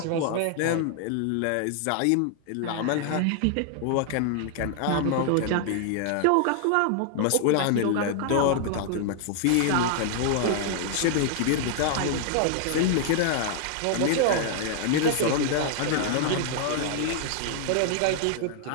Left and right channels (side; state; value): both; different; correlation 0.00